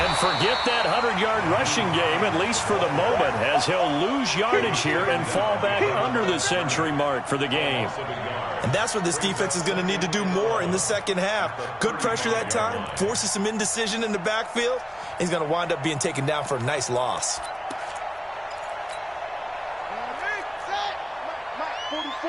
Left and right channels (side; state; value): both; identical; correlation 1.00